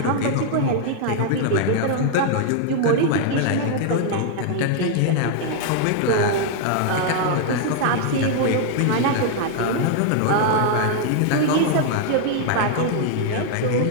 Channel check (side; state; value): both; different; correlation 0.00